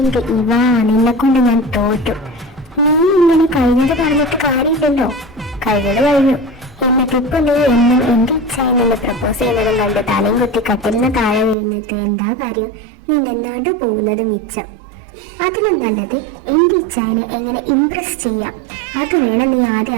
നിന്നെ കൊണ്ട് ഞാൻ തോറ്റു. നീ ഇങ്ങനെ കഴിഞ്ഞത് പറഞ്ഞിട്ട് കാര്യമില്ലല്ലോ. കഴിഞ്ഞത് കഴിഞ്ഞു. എന്നിട്ടിപ്പോ നീ എന്നും എൻ്റെ ഇച്ചായനെ പ്രപ്പോസ് ചെയ്യുന്നതും കണ്ട് തലയും കുത്തി കട്ടിലിന് താഴെ വീണിട്ട് എന്താ കാര്യം? നീ നിന്നാണ്ട് പോകുന്നത് മിച്ചം. അതിലും നല്ലത് എൻ്റെ ഇച്ചായനെ എങ്ങനെ ഇംപ്രസ് ചെയ്യാം, അത് വേണം നീ ആദ്യം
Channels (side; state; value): left; drops out; at 11.6 s